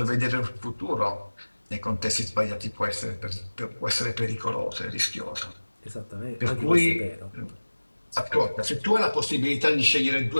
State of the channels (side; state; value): both; inverted; correlation -1.00